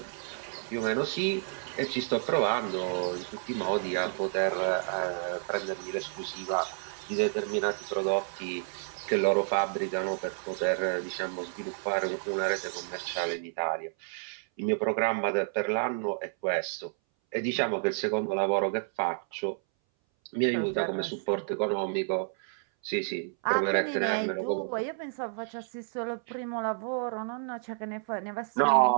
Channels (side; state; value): left; silent; 58 dB below the other